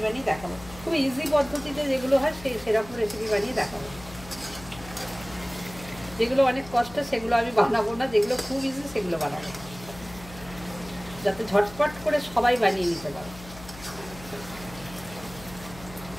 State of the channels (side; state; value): left; noise; hum, 17 dB below the sound